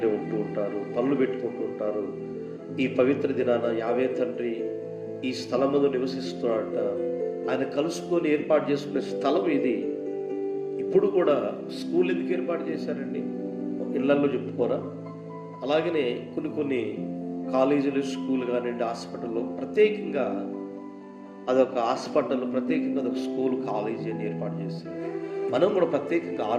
ఉంటూ ఉంటారు, పనులు పెట్టుకుంటూ ఉంటారు. ఈ పవిత్ర దినాన యావే తండ్రి ఈ స్థలం మీద నివసిస్తున్నాడట, ఆయన కలుసుకొని ఏర్పాటు చేసుకునే స్థలం ఇది. ఇప్పుడు కూడా స్కూల్ ఎందుకు ఏర్పాటు చేశారండి? ఇళ్లల్లో చెప్పుకోరా? అలాగనే కొన్ని కాలేజీలు, స్కూల్ కానివ్వండి, హాస్పిటల్లో ప్రత్యేకంగా అదొక హాస్పిటల్, ప్రత్యేకంగా అదొక స్కూల్, కాలేజీ అని ఏర్పాటు చేశారు. మనం కూడా ప్రత్యేకంగా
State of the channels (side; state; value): both; identical; correlation 1.00